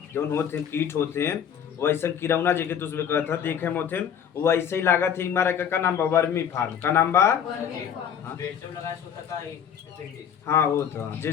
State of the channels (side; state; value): right; quieter; 8.4 dB